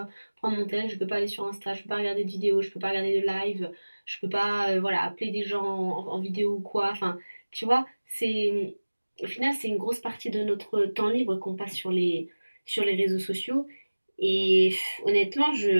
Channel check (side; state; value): both; inverted; correlation -1.00